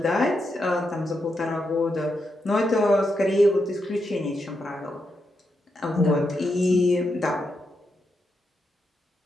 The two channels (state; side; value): normal; both; correlation 0.84